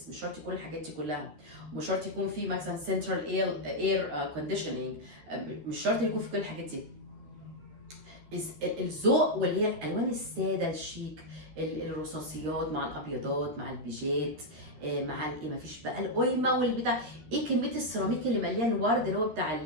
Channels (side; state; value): left; late; 13 ms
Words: مش شرط يكون الحاجات دي كلها، ومش شرط يكون في مثلا سنترال اير كونديشننج، مش شرط يكون في كل الحاجات دي. الذوق واللي هي الالوان الساده الشيك، الرصاصيات مع الابيضات مع البيجات مع الايه، مفيش بقى القيمه والبتاع. ايه كميه السيراميك اللي مليان ورد، اللي هو بتاع